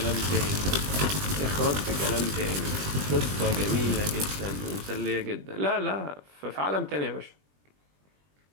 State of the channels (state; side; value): late; left; 20 ms